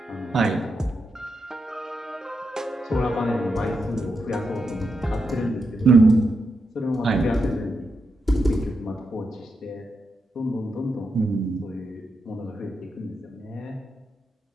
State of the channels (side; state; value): both; normal; correlation 0.84